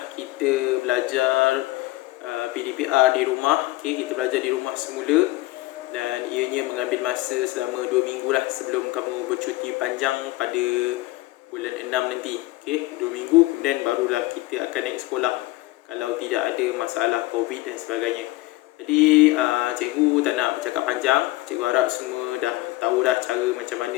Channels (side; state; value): right; quieter; 18.9 dB